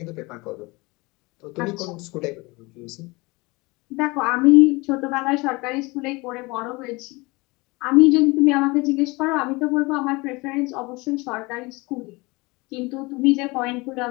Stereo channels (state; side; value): quieter; right; 24.5 dB